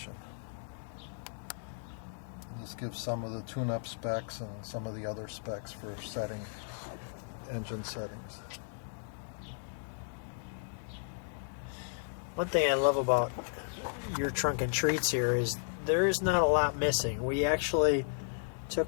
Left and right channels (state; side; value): silent; right; digital silence